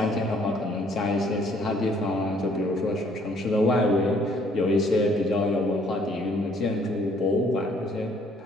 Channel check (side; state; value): both; normal; correlation 0.63